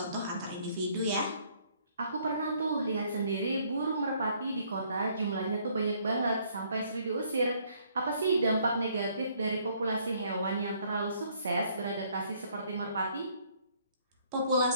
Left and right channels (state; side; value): inverted; both; correlation -0.65